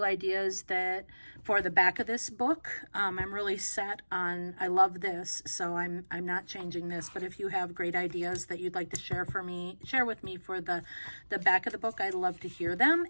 ideas that for the back of this book, I'm really set on, I love this, so I'm not changing this. But if you have great ideas that you'd like to share with me for the back of the book, I'd love to hear them.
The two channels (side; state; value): both; inverted; correlation -1.00